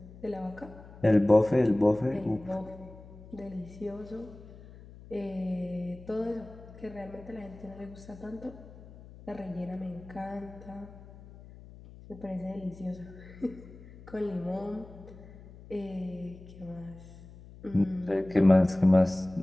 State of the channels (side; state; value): left; noise; hum, 18 dB below the sound